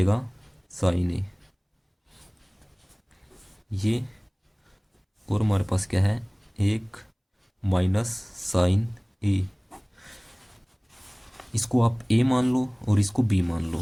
साइन ए ये। और हमारे पास क्या है, एक माइनस साइन ए। इसको आप ए मान लो और इसको बी मान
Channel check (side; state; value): both; identical; correlation 1.00